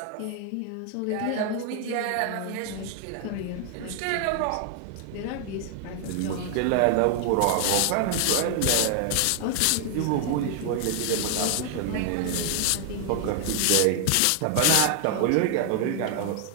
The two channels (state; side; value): different; both; correlation 0.00